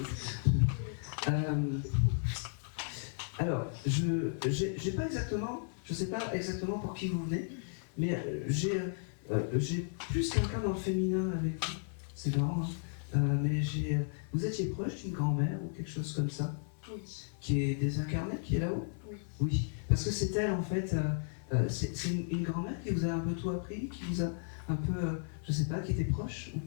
Alors, j'ai pas exactement, je sais pas exactement pour qui vous venez, mais j'ai plus quelqu'un dans le féminin avec vous. C'est marrant, hein. Mais vous étiez proche d'une grand-mère ou quelque chose comme ça? Oui. Qui est désincarnée, qui est là-haut? Oui. Oui, parce que c'est elle en fait. C'est une grand-mère qui vous a un peu tout appris, qui vous a un peu, je sais pas, qui était proche ou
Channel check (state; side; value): silent; right; 55 dB below the other